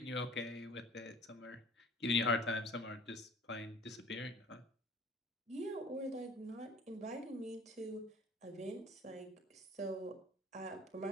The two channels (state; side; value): normal; both; correlation 0.47